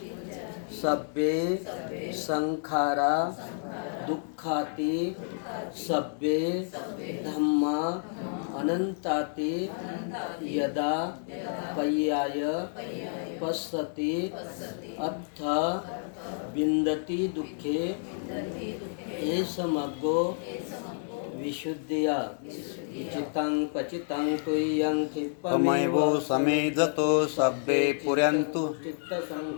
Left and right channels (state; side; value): silent; right; 58 dB below the other